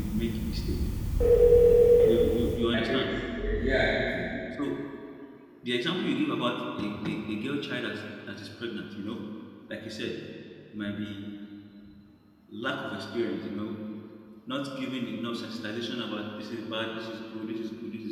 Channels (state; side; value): identical; both; correlation 1.00